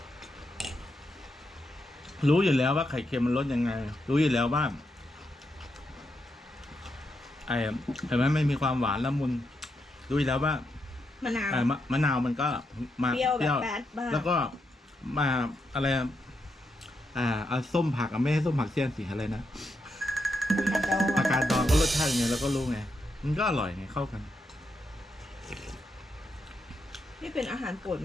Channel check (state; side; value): normal; both; correlation 0.83